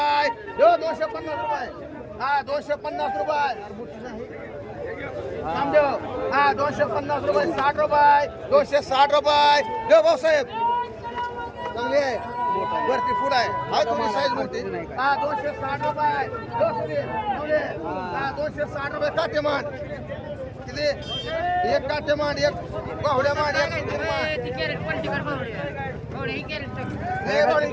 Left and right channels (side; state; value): both; identical; correlation 1.00